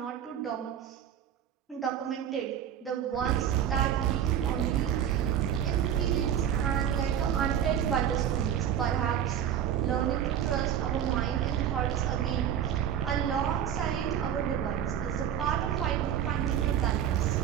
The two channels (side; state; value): left; quieter; 9.6 dB